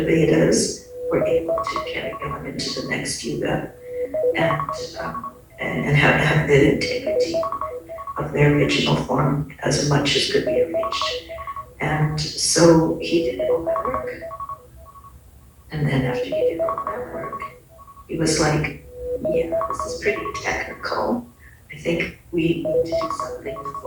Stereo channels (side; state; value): both; identical; correlation 1.00